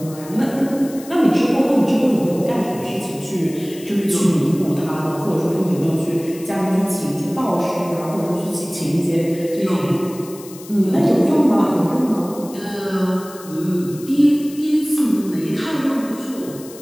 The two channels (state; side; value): noise; left; hiss, 18 dB below the sound